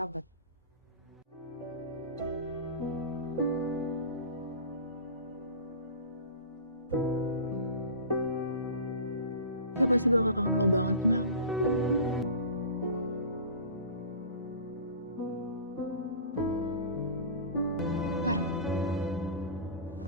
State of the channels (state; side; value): inverted; both; correlation -0.36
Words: Dia pasti bakal kangen lo banget, Mel. Ntar.